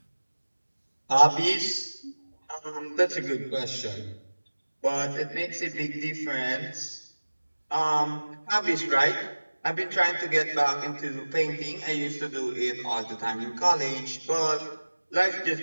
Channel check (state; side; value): inverted; both; correlation -1.00